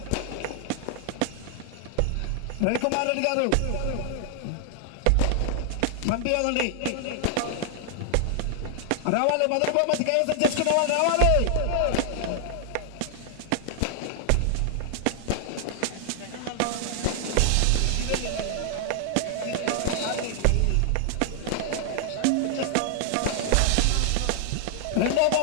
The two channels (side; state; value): both; different; correlation 0.00